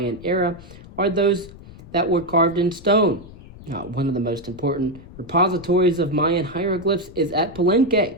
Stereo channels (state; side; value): noise; left; rumble, 18 dB below the sound